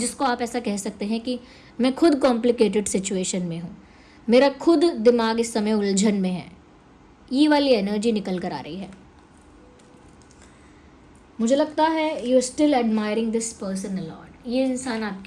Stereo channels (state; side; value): identical; both; correlation 1.00